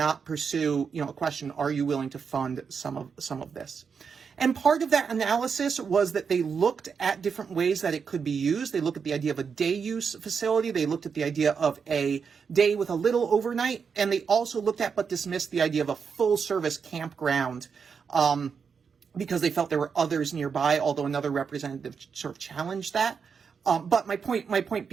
pursue, you know, a question, are you willing to fund some of this? And part of that analysis was that they looked at different ways that it could be used. They looked at the idea of a day use facility. They looked at the idea of a day with a little overnight. And they also looked at but dismissed the idea of a full service campground because they felt there were others nearby, although another representative sort of challenged that. But my point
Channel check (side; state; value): left; quieter; 6.1 dB